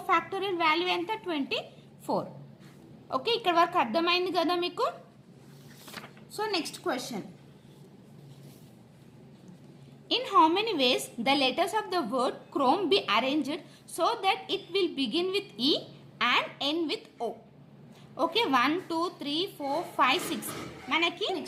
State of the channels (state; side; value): identical; both; correlation 1.00